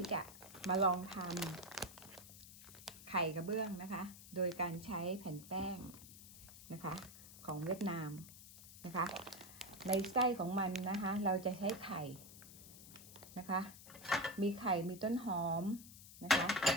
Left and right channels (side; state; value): left; noise; hiss, 16 dB below the sound